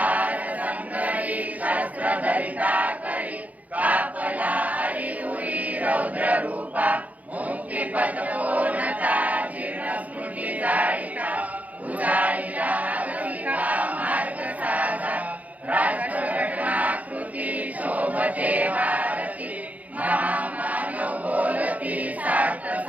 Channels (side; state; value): left; late; 0.073 ms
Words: संगरी शस्त्रधरिता करी कापला हरि